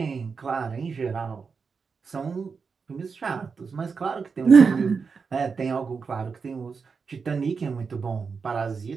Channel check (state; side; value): quieter; left; 5.3 dB